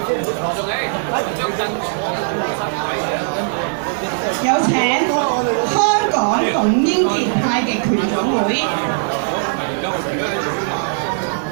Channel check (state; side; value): silent; left; digital silence